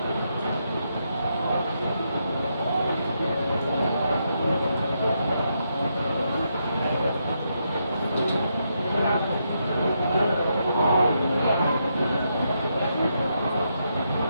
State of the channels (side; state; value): both; inverted; correlation -0.80